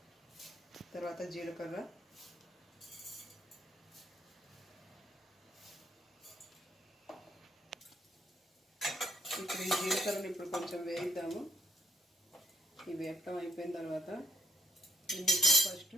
తర్వాత జీలకర్ర, ఇప్పుడు ఈ జీలకర్రని ఇప్పుడు కొంచెం వేయిద్దాము. ఈ వేపటం అయిపోయిన తర్వాత ఇందులో ఫస్ట్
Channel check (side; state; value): both; normal; correlation 0.71